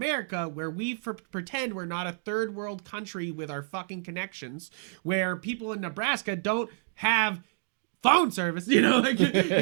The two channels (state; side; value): silent; left; digital silence